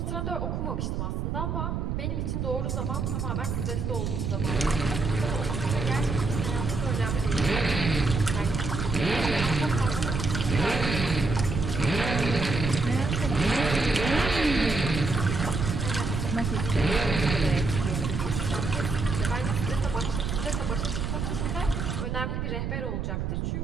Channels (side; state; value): right; noise; rumble, 2 dB below the sound